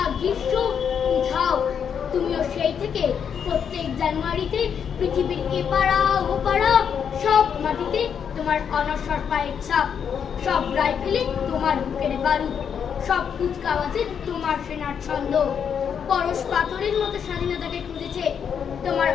গ্রীষ্ম উঠাও। তুমিও সেই থেকে প্রত্যেক জানুয়ারিতে পৃথিবীর এপাড়া ওপাড়া সব মাটিতে তোমার অনশ্বর পায়ের ছাপ, সব রাইফেলে তোমার বুকের বারুদ, সব কুচকাওয়াজে তোমার সেনার ছন্দ। পরশ পাথরের মতো স্বাধীনতাকে খুঁজেছে তোমার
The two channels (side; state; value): right; quieter; 7.6 dB